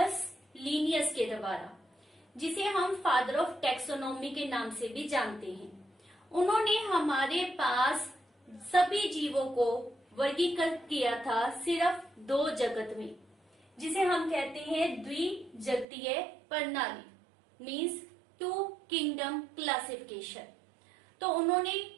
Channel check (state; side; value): drops out; left; at 15.9 s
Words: Linnaeus के द्वारा, जिसे हम फादर ऑफ टैक्सोनॉमी के नाम से भी जानते हैं। उन्होंने हमारे पास सभी जीवों को वर्गीकृत किया था सिर्फ दो जगत में, जिसे हम कहते हैं द्विजगतीय प्रणाली, मीन्स टू किंगडम क्लासिफिकेशन। तो उन्होंने